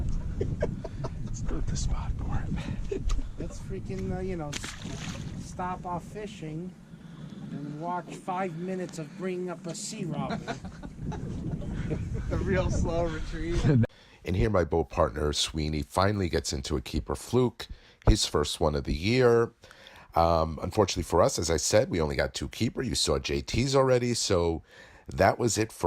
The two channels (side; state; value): both; identical; correlation 1.00